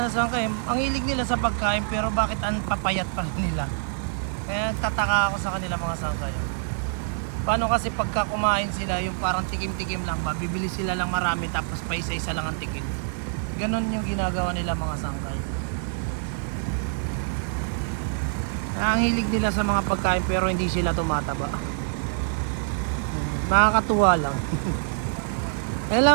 sa sangkay, ang hilig nila sa pagkain, pero bakit ang papayat pa rin nila? Kaya tataka ako sa kanila mga sangkay. Paano kasi pagka kumain sila, yung parang tikim-tikim lang ba, bibili sila lang marami tapos pa isa-isa lang ang tikim. Ganon yung ginagawa nila mga sangkay. Ang hilig nila sa mga pagkain pero hindi sila tumataba. Nakakatuwa lang. Yan lang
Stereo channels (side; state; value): left; silent; digital silence